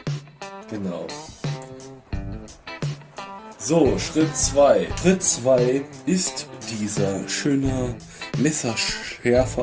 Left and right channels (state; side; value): identical; both; correlation 1.00